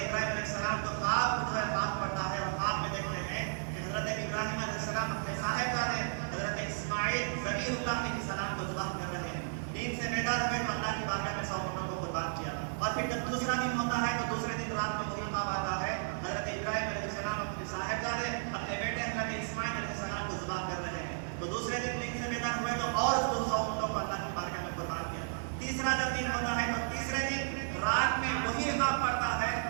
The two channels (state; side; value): silent; left; 55 dB below the other